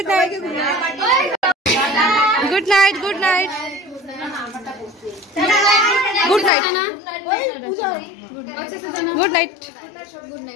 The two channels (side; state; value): right; drops out; at 6.5 s